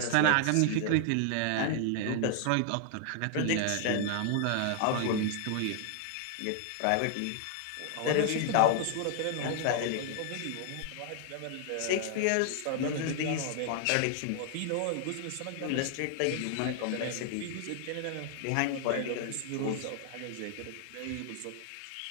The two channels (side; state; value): both; different; correlation 0.00